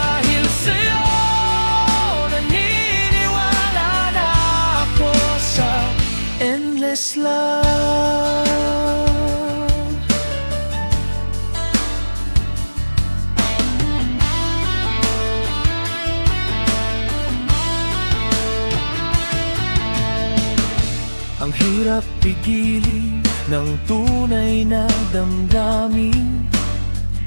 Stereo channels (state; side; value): inverted; both; correlation -1.00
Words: sa'yo, naniniwala na ako sa endless love. Ang hirap pigilin ng tunay na damdamin,